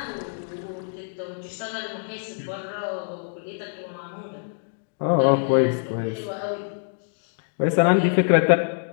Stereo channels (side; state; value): right; silent; digital silence